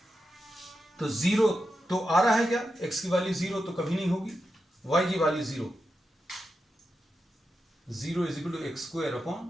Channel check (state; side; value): normal; both; correlation 0.88